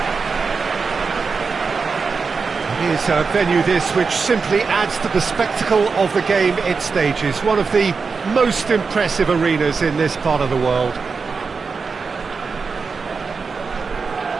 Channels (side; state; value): left; quieter; 4.9 dB